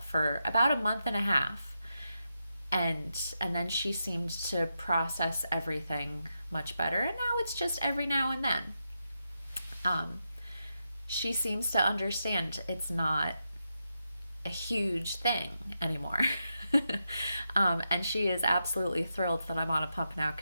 for about a month and a half. And then she seemed to process everything much better. And now it's just every now and then. She seems to understand it's not a huge thing anymore. And she is absolutely thrilled that I'm on a pump now,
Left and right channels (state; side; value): inverted; both; correlation -0.86